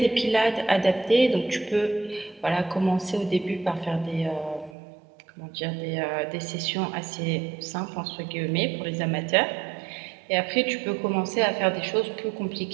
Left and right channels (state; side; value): drops out; left; at 4.8 s